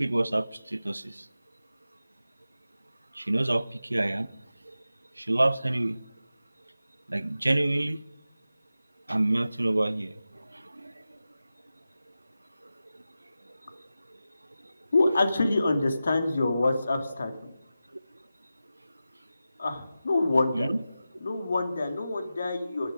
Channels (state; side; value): inverted; both; correlation -0.93